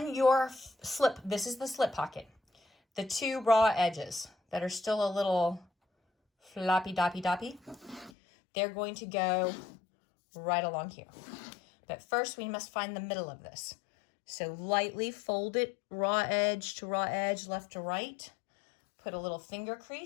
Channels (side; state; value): right; drops out; at 8.1 s